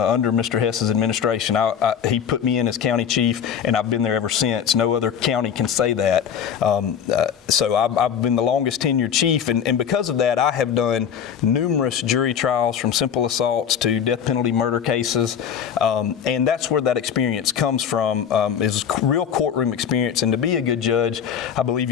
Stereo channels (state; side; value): quieter; right; 8.1 dB